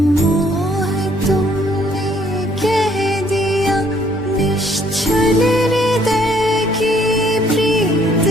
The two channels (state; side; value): normal; both; correlation 0.64